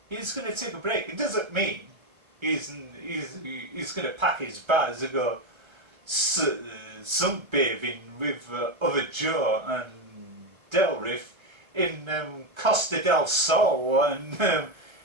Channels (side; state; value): left; late; 1.3 ms